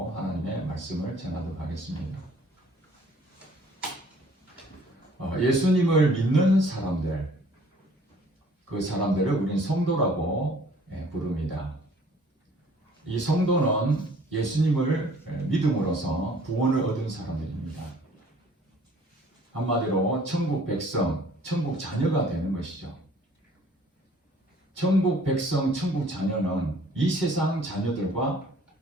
하나님의 말씀을 전하도록 하겠습니다. 예수님을 믿는 사람들, 그 사람들을 우린 성도라고 부릅니다. 이 성도는 예수님을 믿음으로써 구원을 얻은 사람들입니다. 한마디로 천국 백성, 천국 자녀가 되는 것이죠. 천국 백성, 천국 자녀는 이 세상 자녀들과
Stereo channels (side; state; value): both; normal; correlation 0.55